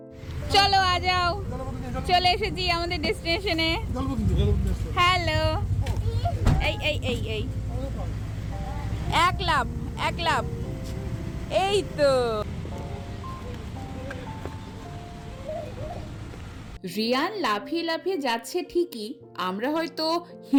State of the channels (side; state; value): both; identical; correlation 1.00